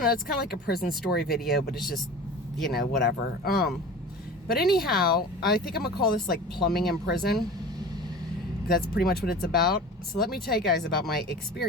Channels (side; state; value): both; normal; correlation 0.38